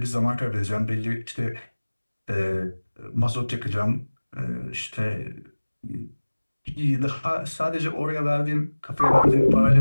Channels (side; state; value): both; inverted; correlation -1.00